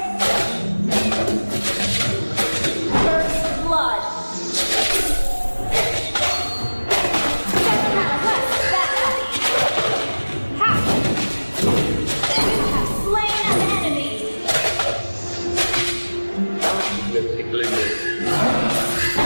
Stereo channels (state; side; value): inverted; both; correlation -1.00